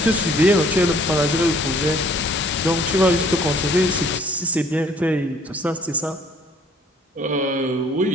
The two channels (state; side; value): normal; both; correlation 0.58